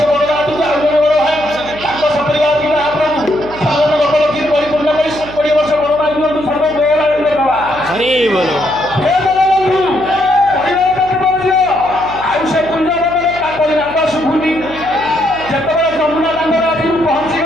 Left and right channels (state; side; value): noise; right; hum, 16 dB below the sound